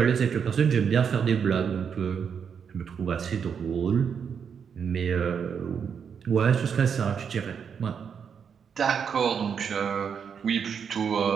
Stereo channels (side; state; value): left; quieter; 7.0 dB